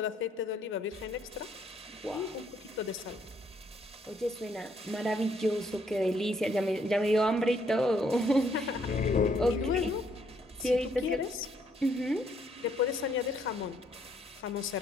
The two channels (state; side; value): normal; both; correlation 0.69